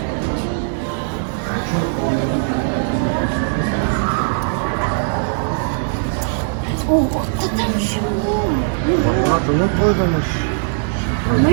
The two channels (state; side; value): silent; left; digital silence